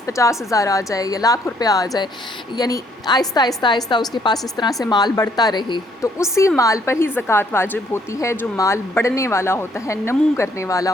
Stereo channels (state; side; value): normal; both; correlation 0.67